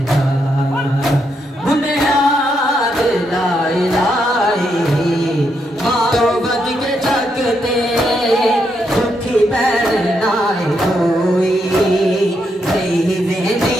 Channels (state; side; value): normal; both; correlation 0.79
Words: दा बुनियाद ला इलाहे मातो वध के जग ते दुखी बैर नाई कोई, रही वेंदी